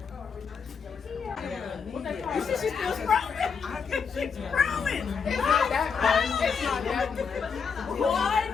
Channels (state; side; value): quieter; right; 6.0 dB